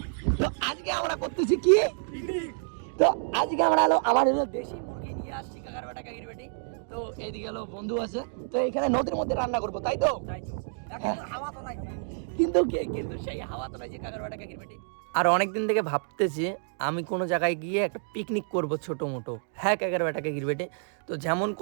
তো আজকে আমরা করতেছি কি, তো আজকে আমরা আমার দেশি মুরগি নিয়ে আসছি কাকার বেটা কাকির বেটি। তো এইদিকে বন্ধু আছে, তো এখানে নদীর মধ্যে রান্না করবো, তাই তো? হাওয়া তো নাই, কিন্তু সেই হাওয়া তো নাই যে কাকার বেটা কাকির বেটি। আর অনেকদিন থেকে ভাবতেছি আমি কোনো জায়গায় গিয়ে একটা পিকনিক করব ছোট মোটো। হ্যাঁ কাকার বেটা কাকির বেটি, তো যেমন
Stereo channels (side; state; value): left; silent; digital silence